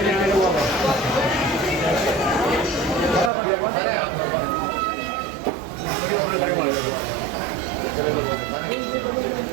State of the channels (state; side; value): drops out; left; at 3.3 s